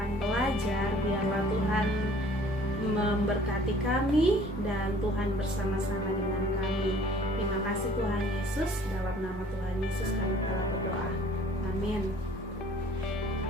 belajar, biarlah Tuhan memberkati kami dan Tuhan bersama-sama dengan kami. Terima kasih Tuhan Yesus, dalam nama Tuhan Yesus kami telah berdoa. Amin.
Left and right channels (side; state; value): both; normal; correlation 0.53